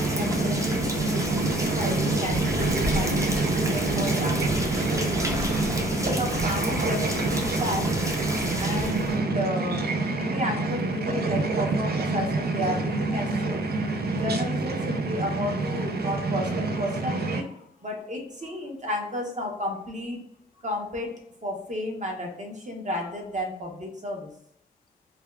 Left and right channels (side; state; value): both; normal; correlation 0.54